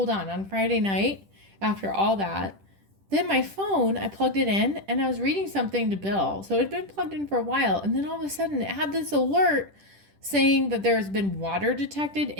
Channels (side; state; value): left; late; 10 ms